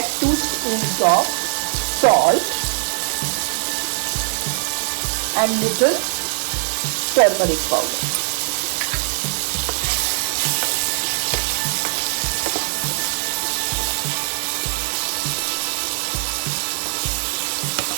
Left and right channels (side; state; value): left; silent; 65 dB below the other